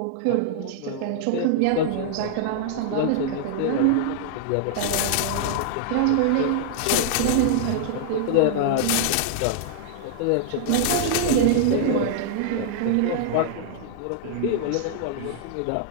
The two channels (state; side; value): different; both; correlation -0.01